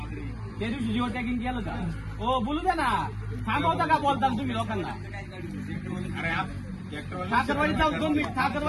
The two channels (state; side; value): identical; both; correlation 1.00